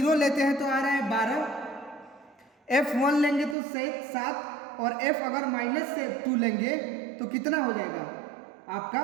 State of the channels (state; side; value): drops out; left; at 3.6 s